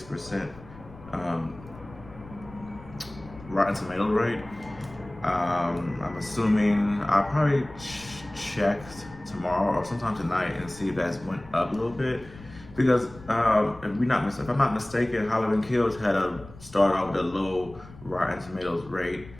Rotten Tomato rate. I'm assuming I'll probably check tomorrow or sometime tonight and see if that's went up a little bit. Because if I'm not mistaken, Halloween Kills had started off with a low Rotten Tomatoes rate.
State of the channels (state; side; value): noise; left; rumble, 19 dB below the sound